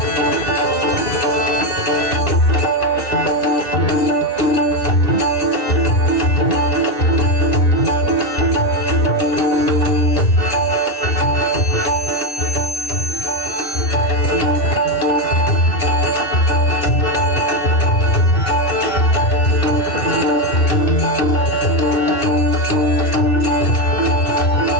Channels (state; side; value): late; right; 2.6 ms